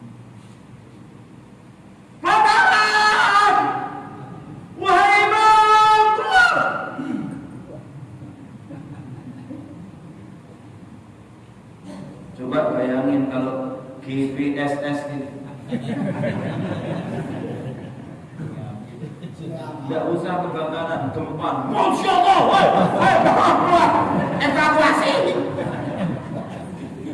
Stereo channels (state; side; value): identical; both; correlation 1.00